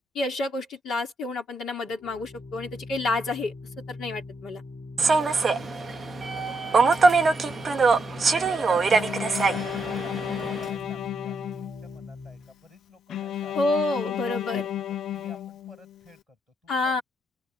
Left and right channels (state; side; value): normal; both; correlation 0.78